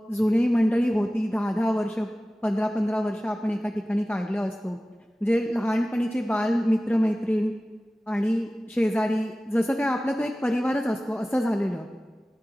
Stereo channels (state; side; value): normal; both; correlation 0.97